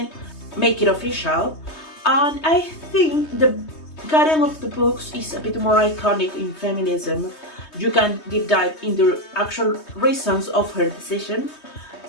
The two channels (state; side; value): late; right; 3.2 ms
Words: make it official. And I think the Karen of the books is a bit more iconic in feminism. You can deep dive in the actual reasons of her decision,